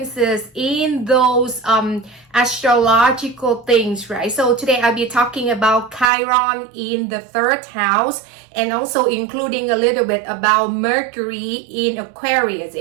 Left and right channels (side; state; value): left; drops out; at 6.1 s